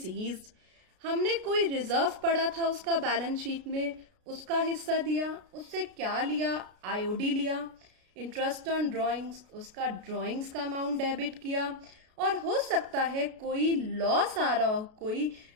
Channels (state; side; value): late; left; 33 ms